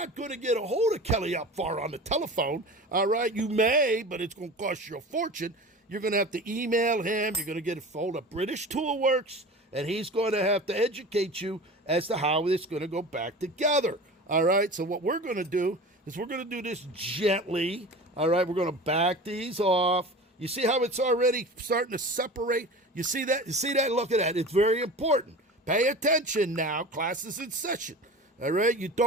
going to get a hold of Kelly Opvar on the telephone. All right, you may, but it's going to cost you a fortune. You're going to have to email him. You're going to get a hold of British Toolworks, and he's going to have to educate you as to how it's going to go back together. All right, so what we're going to do is we're going to do this gently. All right, we're going to back these off. You see how it's already starting to separate? You see that? You see that? Look at that. It's very important. Pay attention now. Class is in session. All right, you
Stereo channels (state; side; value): normal; both; correlation 0.35